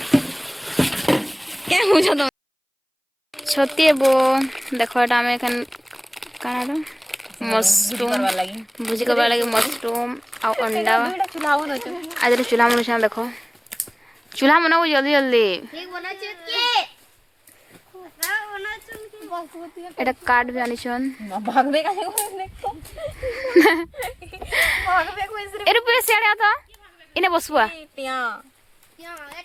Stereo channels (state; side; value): identical; both; correlation 1.00